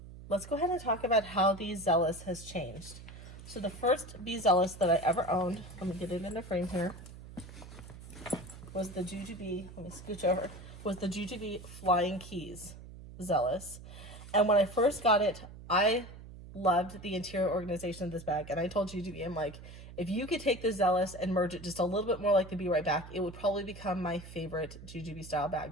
Let's go ahead and talk about how the Zealous has changed. So the first Be Zealous that I ever owned, let me get it in the frame here, was the JuJuBe, let me scooch over, was the JuJuBe Flying Keys Zealous. And when I first got it, I loved the interior organization of this bag. And I told JuJuBe, I'm like, if you could take the Zealous and merge it just a little bit more like the Be Right Back, it would probably become my favorite JuJuBe style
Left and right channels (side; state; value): right; noise; hum, 15 dB below the sound